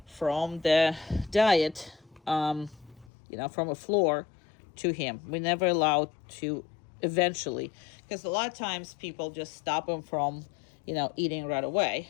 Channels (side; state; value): right; drops out; at 3.1 s